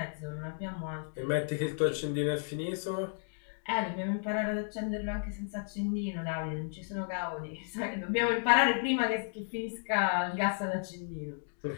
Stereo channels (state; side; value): silent; right; digital silence